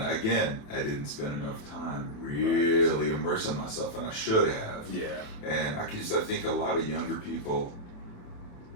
I didn't spend enough time really immersing myself, and I should have. Yeah. And I think a lot of younger people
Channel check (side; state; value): right; late; 28 ms